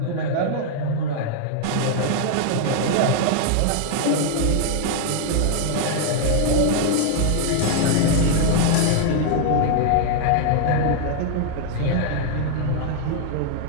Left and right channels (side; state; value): both; different; correlation 0.00